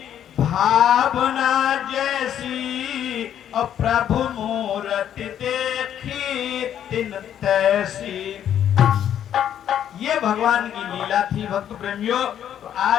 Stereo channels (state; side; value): quieter; right; 10.0 dB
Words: भावना जैसी और प्रभु मूर्ति देखी तिन तैसी। ये भगवान की लीला थी भक्त प्रेमियों। तो